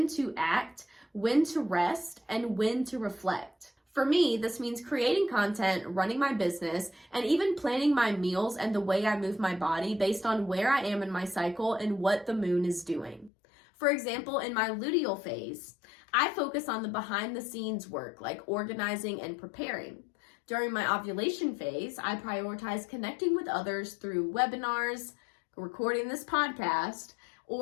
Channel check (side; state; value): right; drops out; at 13.3 s